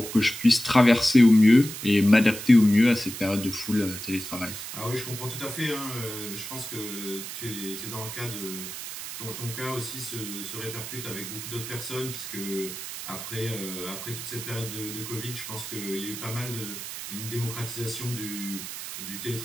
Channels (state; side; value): noise; right; hiss, 8 dB below the sound